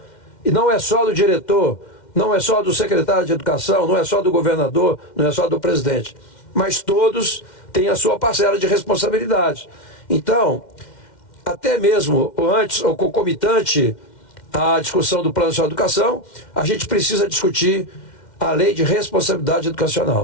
e não é só do diretor, não é só do secretário de educação, não é só do governador, não é só do presidente. Mas todos têm a sua parcela de responsabilidade. Então, até mesmo antes, ou concomitante à discussão do Plano Nacional de Educação, a gente precisa discutir a Lei de Responsabilidade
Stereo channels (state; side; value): late; right; 2.1 ms